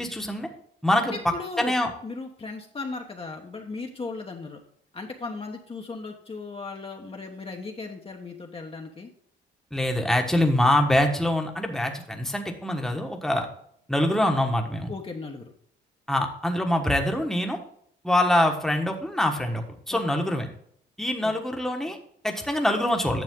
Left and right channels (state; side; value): normal; both; correlation 0.83